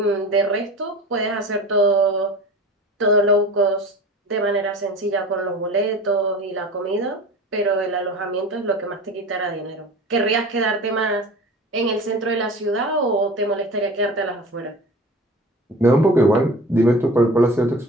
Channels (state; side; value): normal; both; correlation 0.37